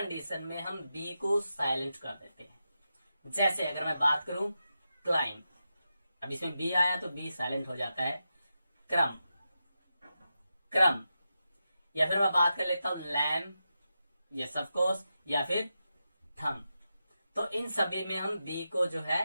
में हम बी को साइलेंट कर देते हैं। जैसे अगर मैं बात करूं क्लाइम, अब इसमें बी आया तो बी साइलेंट हो जाता है। क्रम, क्रम, या फिर मैं बात कर लेता हूं लैम, यस ऑफ कोर्स, या फिर थम। तो इन सभी में हम बी को जो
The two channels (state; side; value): inverted; both; correlation -0.89